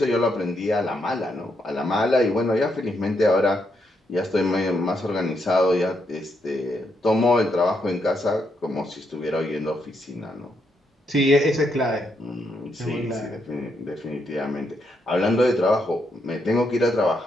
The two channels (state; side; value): normal; both; correlation 0.79